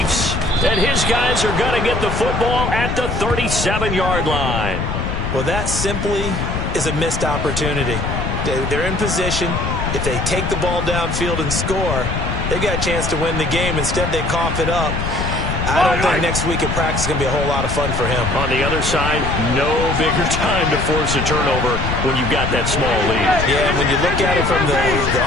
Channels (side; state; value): left; noise; rumble, 3 dB below the sound